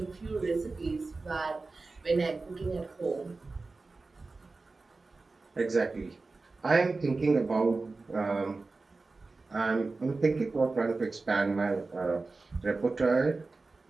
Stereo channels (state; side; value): quieter; left; 3.7 dB